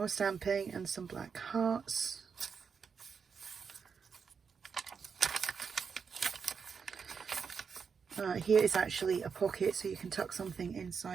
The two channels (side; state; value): left; quieter; 6.1 dB